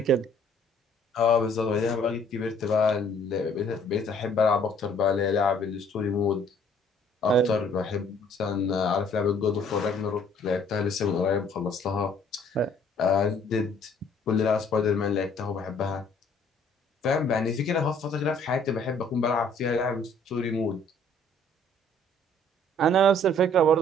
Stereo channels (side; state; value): both; normal; correlation 0.59